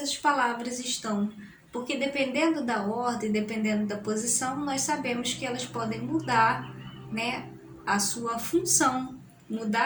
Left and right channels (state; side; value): identical; both; correlation 1.00